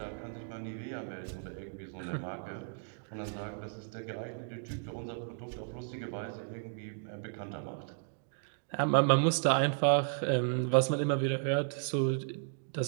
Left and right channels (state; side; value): silent; left; digital silence